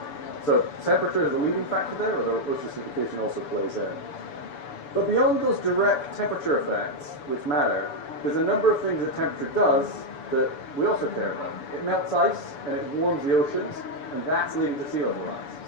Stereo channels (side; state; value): right; late; 7.0 ms